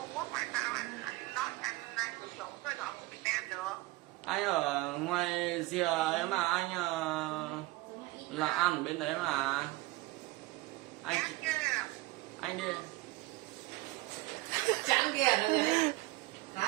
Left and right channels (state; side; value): quieter; left; 20.4 dB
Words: Quốc mà sao anh nói anh sử dụng số điện thoại của Việt Nam được? Anh ở ngoài rìa ấy mà anh là ăn ở bên đấy mà. Anh Chắc chứ. anh đi. Trắng kia nó gì đấy.